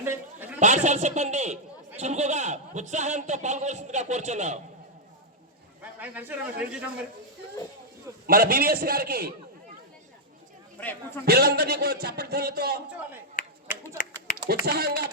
పాఠశాల సిబ్బంది చురుకుగా ఉత్సాహంతో పాల్గొనవలసిందిగా కోరుచున్నాం. మన బివిఎస్ గారికి పిల్లలందరినీ కూడా చప్పట్లతో ఉత్సాహంగా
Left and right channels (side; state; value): both; normal; correlation -0.05